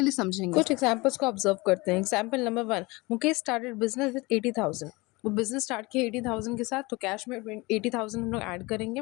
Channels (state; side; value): quieter; right; 24.0 dB